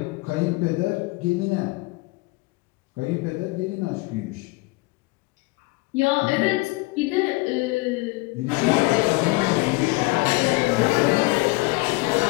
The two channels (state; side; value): quieter; right; 24.0 dB